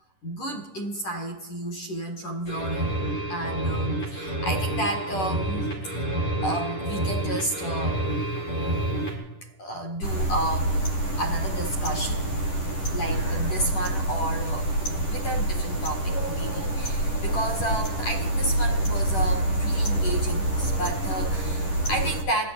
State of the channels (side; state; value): right; late; 10 ms